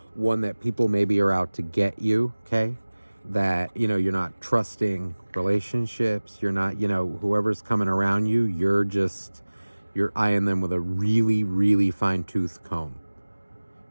one that people maybe are out to get you, okay? That, you're not trusting relationships. You're not, whoever's coming around you, you're eyeing them with a really, really fine-tooth comb.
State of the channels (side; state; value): both; inverted; correlation -1.00